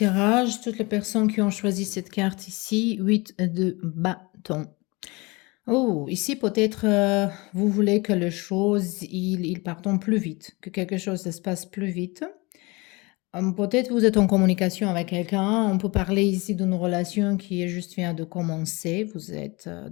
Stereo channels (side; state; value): right; quieter; 25.4 dB